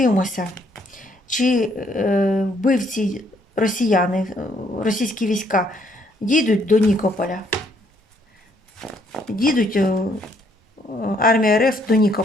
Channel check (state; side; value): normal; both; correlation 0.68